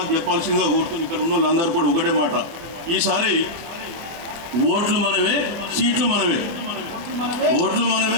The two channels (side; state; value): left; late; 23 ms